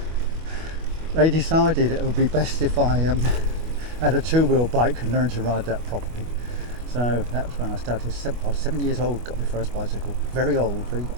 they decided it would be best if I had a 2-wheel bike and learned to ride that properly. So that was when I started. I was 7 years old, got my first bicycle. Very old, very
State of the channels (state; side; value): late; left; 25 ms